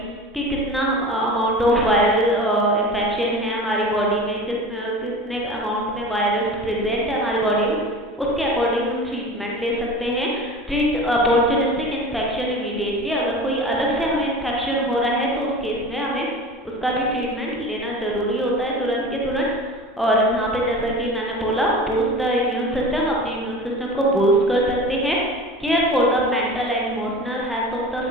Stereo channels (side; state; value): both; normal; correlation 0.35